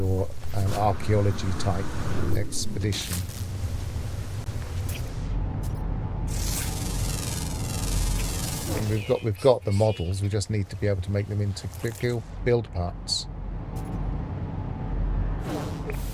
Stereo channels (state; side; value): identical; both; correlation 1.00